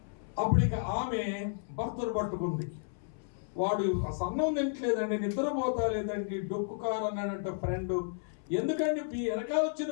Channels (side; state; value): right; silent; 56 dB below the other